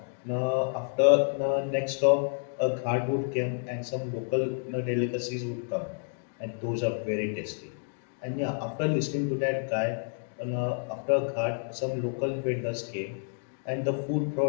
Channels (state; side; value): silent; right; digital silence